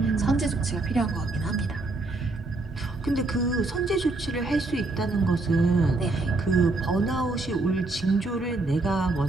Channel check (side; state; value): left; quieter; 3.1 dB